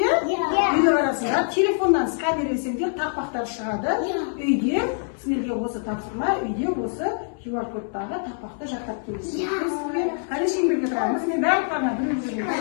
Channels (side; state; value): right; silent; digital silence